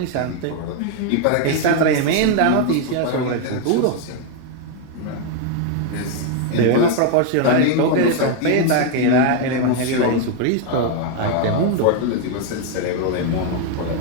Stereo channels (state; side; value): different; both; correlation 0.01